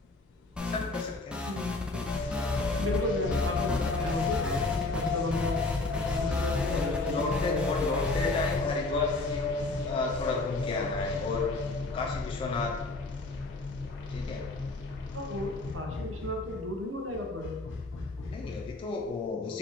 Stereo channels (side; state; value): right; quieter; 3.1 dB